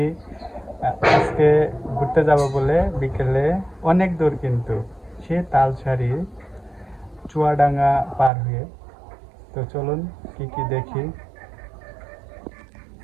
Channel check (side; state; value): left; drops out; at 8.3 s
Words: আজকে ঘুরতে যাব বলে বিকেলে অনেক দূর, কিন্তু সে তালসারি চুয়াডাঙ্গা পার হয়ে। তো চলুন কি কি দেখি।